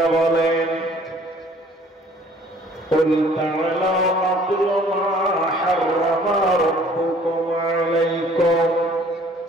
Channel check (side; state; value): both; normal; correlation 0.55